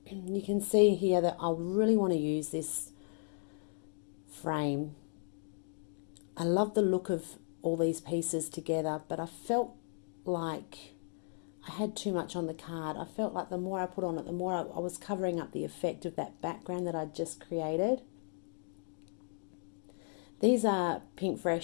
You can see here that I really want to use this frame. I love the look of all these pieces together, but I felt like I had too much on the card. I felt like the more I put on it, the more I was covering up the effect of that background that I'd just created. These are Pink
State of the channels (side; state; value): right; silent; digital silence